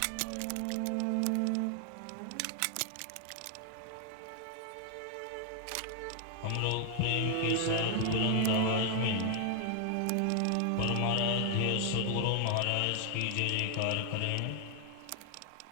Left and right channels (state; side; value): different; both; correlation 0.00